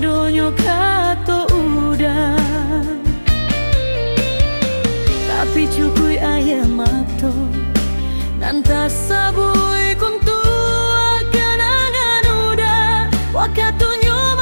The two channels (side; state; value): both; inverted; correlation -1.00